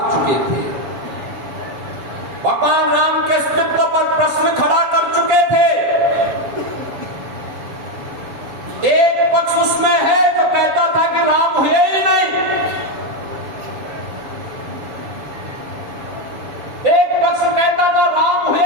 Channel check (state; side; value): late; left; 7.2 ms